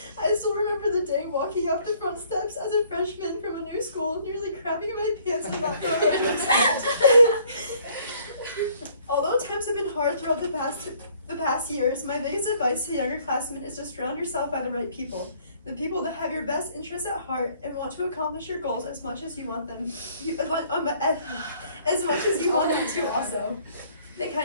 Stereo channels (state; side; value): inverted; both; correlation -0.61